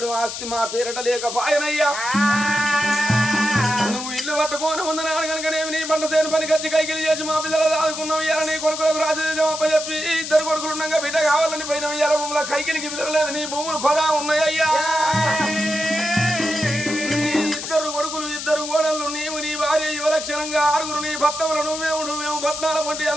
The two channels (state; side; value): noise; left; hiss, 7 dB below the sound